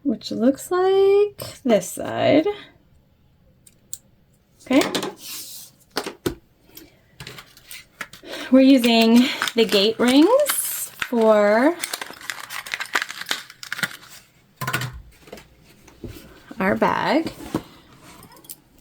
Which looks like this side. Okay. We're using the gate rings for our bag.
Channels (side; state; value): both; identical; correlation 1.00